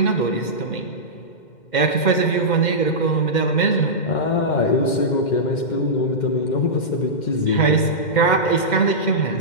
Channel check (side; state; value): right; late; 2.1 ms